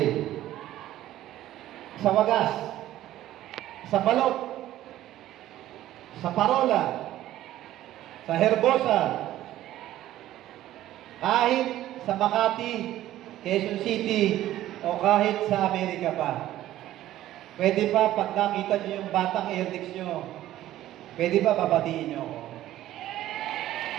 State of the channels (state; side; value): quieter; left; 13.9 dB